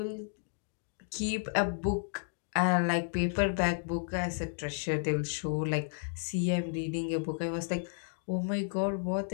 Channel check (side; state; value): right; silent; digital silence